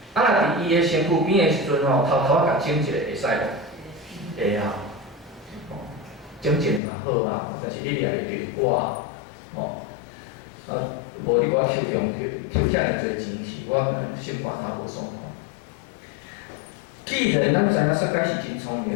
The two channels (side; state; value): right; drops out; at 6.8 s